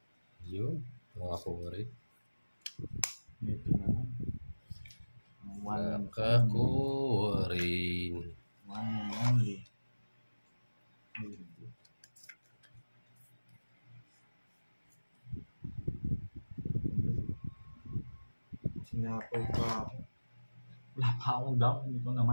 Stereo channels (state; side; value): inverted; both; correlation -1.00